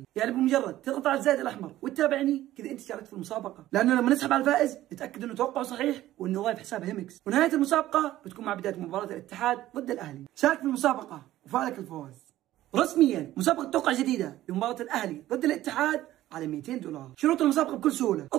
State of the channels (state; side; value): quieter; left; 14.6 dB